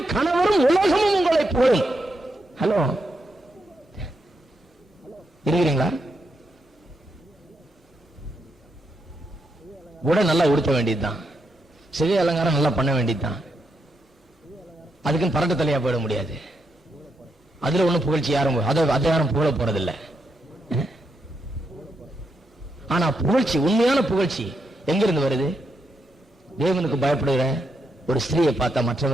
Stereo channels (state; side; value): normal; both; correlation 0.82